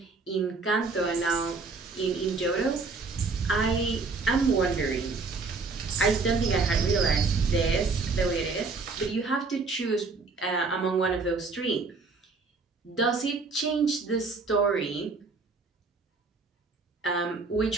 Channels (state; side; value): quieter; left; 4.1 dB